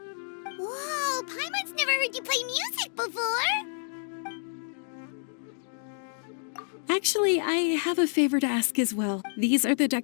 Whoa, Paimon's never heard you play music before! Actually, I have a favor to ask as well. These are the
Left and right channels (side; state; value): right; silent; digital silence